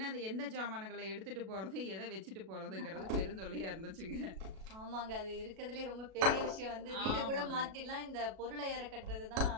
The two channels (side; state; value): left; late; 37 ms